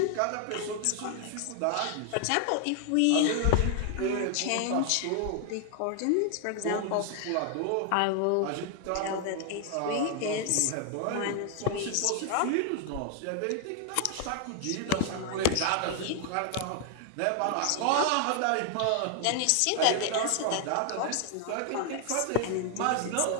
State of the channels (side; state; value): both; different; correlation 0.00